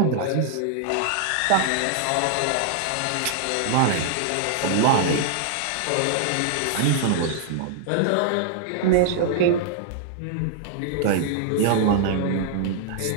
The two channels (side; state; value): both; different; correlation -0.01